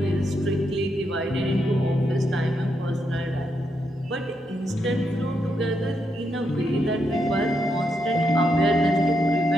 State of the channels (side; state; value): both; normal; correlation 0.81